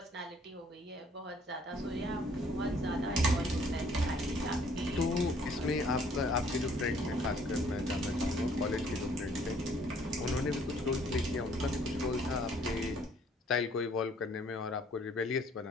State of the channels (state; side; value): normal; both; correlation 0.61